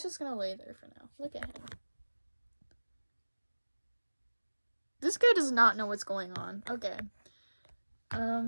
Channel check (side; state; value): both; inverted; correlation -1.00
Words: just gonna lay there for now. Look at him. This guy does not know what's going on. Okay.